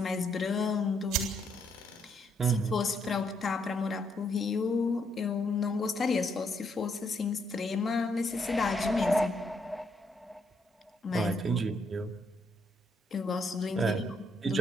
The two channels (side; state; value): both; normal; correlation 0.74